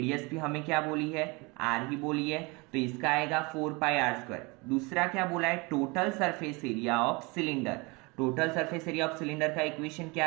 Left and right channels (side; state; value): left; quieter; 27.1 dB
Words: भी हमें क्या बोली है r ही बोली है, तो इसका आएगा 4 पाई r स्क्वायर। दूसरा क्या बोला है total surface area of cylinder. Total surface area of cylinder का इक्वेशन